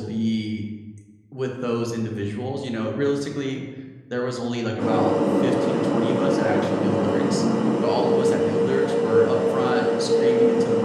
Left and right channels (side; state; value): both; identical; correlation 1.00